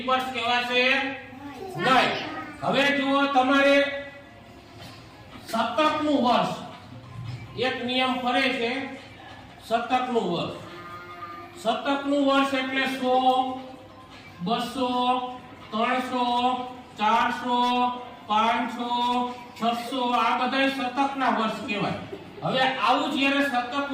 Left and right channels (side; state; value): both; identical; correlation 1.00